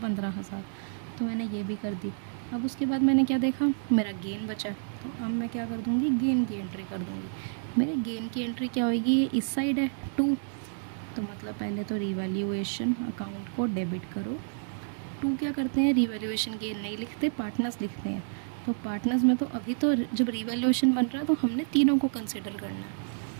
तो मैंने ये भी कर दी। अब उसके बाद मैंने क्या देखा, मेरा गेन बचा, तो अब मैं क्या कर दूँगी, गेन की एंट्री कर दूँगी। मेरे गेन की एंट्री क्या होगी, ये इस साइड है 2, तो मतलब पहले तो रीवैल्यूएशन अकाउंट को डेबिट करो। 2 क्या करते हैं, रीवैल्यूएशन गेन नहीं लिखते, पार्टनर्स लिखते हैं। तो पार्टनर्स में तो अभी तो जब रीवैल्यूएशन बन रहा है तो हमने तीनों को कंसिडर करना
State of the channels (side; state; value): left; silent; digital silence